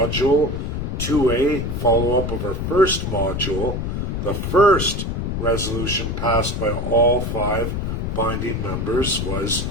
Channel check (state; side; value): noise; left; rumble, 2 dB below the sound